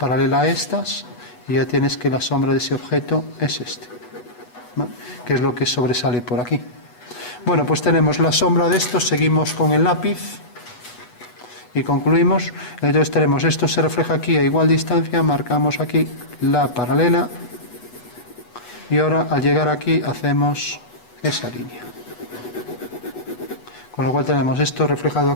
a estas y ya tienes que la sombra de ese objeto es este, ¿no? Que es lo que sobresale por aquí. Bueno, pues tenemos la sombra de esto, seguimos con el lápiz y concluimos. Entonces tenemos esto se refleja aquí a igual distancia, marcamos aquí la paralela y ahora al llegar aquí hacemos esa línea. Con lo cual tenemos esto reflejado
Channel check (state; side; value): late; right; 8.2 ms